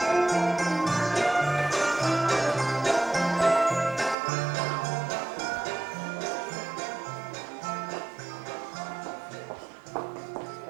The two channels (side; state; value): left; drops out; at 4.2 s